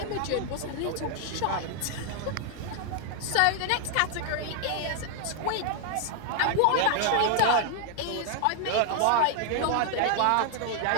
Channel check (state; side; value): different; both; correlation 0.00